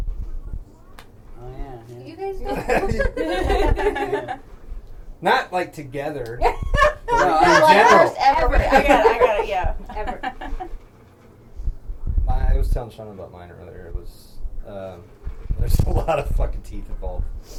Oh yeah. You guys don't. Not like together. No, in general. Ever. I got it, yeah. Ever. I was telling Shauna about mine earlier. It was, there's a lot of fucking teeth involved.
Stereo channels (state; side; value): identical; both; correlation 1.00